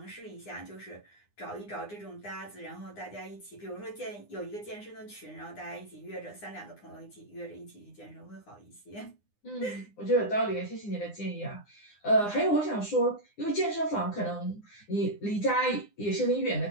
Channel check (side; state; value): right; late; 9.8 ms